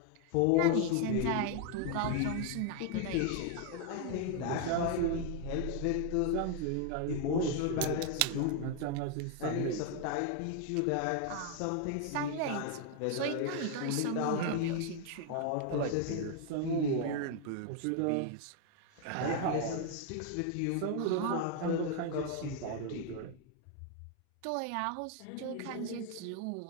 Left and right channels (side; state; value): both; different; correlation 0.00